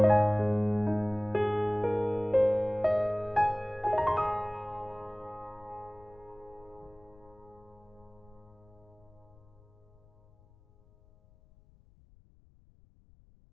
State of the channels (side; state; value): left; noise; rumble, 28 dB below the sound